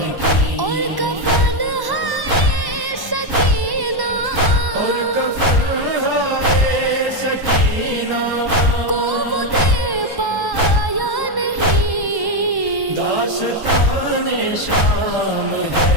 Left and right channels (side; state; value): left; late; 1.1 ms